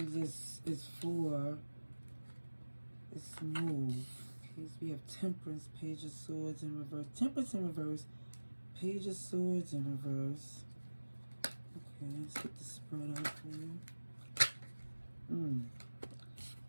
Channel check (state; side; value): inverted; both; correlation -1.00